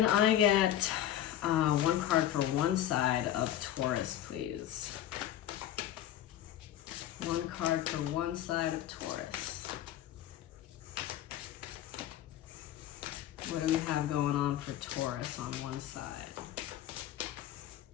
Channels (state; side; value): quieter; right; 11.9 dB